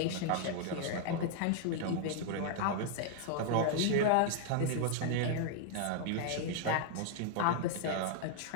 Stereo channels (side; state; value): both; different; correlation 0.00